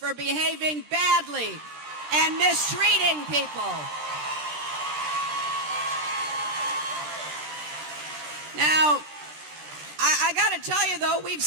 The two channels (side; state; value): left; late; 13 ms